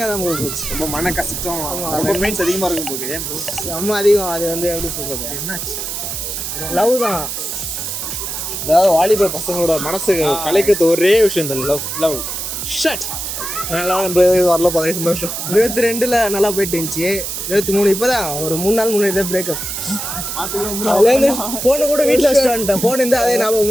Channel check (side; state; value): right; noise; hiss, 5 dB below the sound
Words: தான் போச்சு. ரொம்ப மன கஷ்டம், ரொம்ப பெயின்ஸ் அதிகமாக இருக்கும் போகுது. ஏன் ப்ரோ? ரொம்ப அதிகம். அது எப்படி சொல்கிறது, என்னாச்சு? லவ் தான். அதாவது வாலிப பசங்களோட மனசு கலைக்கிறது ஒரே விஷயம் இந்த லவ் ஷட். நல்லா வரல, பதவி சந்தோஷம். 22 நல்லா போயிட்டு இருந்துச்சு. 23 இப்போதான் ஒரு 3 நாள் முன்னாடி தான் பிரேக்கப். அதுலேருந்து ஃபோனை கூட வீட்டில் வச்சுட்டு வந்துட்டேன். ஃபோன் இருந்தால் அதே